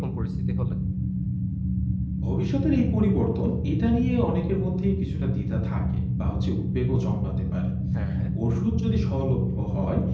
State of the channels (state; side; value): identical; both; correlation 1.00